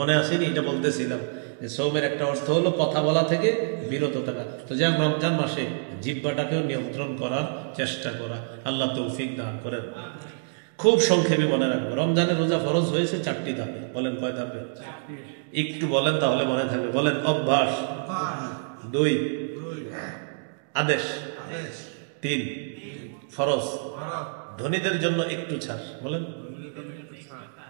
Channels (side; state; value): left; silent; digital silence